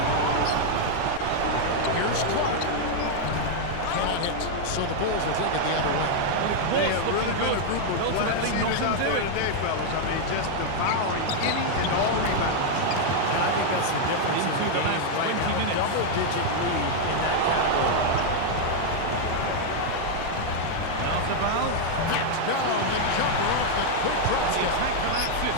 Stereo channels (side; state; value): both; different; correlation 0.00